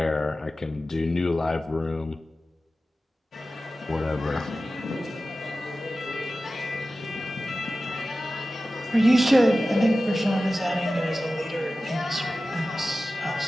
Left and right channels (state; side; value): normal; both; correlation 0.95